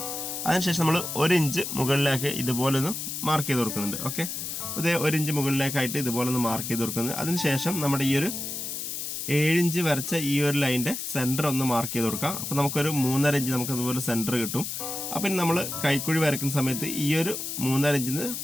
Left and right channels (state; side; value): noise; left; hiss, 5 dB below the sound